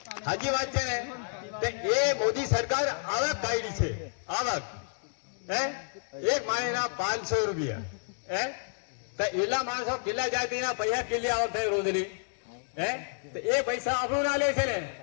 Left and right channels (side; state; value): right; silent; digital silence